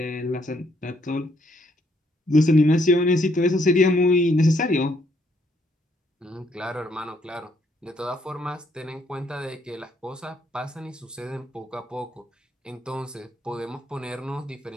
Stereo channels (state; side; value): normal; both; correlation 0.71